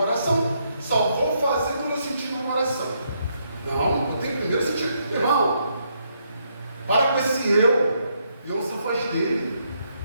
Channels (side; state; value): both; inverted; correlation -0.76